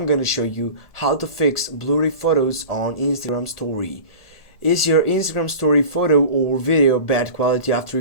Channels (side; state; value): right; late; 1.4 ms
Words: gonna show you how to fix blurry photos on Instagram story. Is your Instagram story photo or video bad quality after